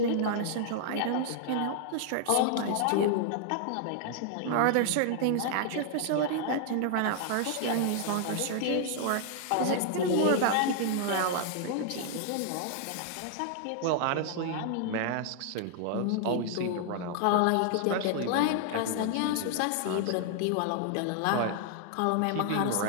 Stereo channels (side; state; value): both; different; correlation 0.00